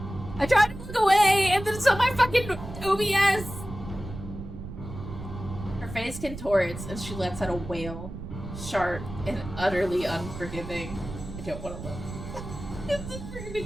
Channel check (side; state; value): right; noise; rumble, 10 dB below the sound